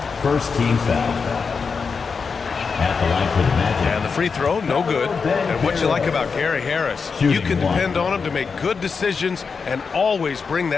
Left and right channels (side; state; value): right; quieter; 5.3 dB